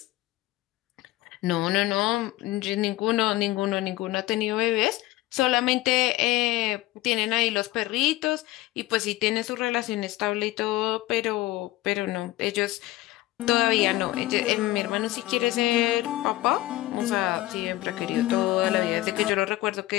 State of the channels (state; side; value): quieter; right; 17.3 dB